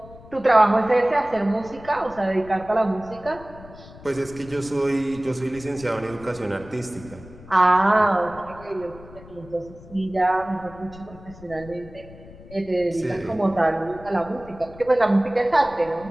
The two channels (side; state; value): left; noise; rumble, 19 dB below the sound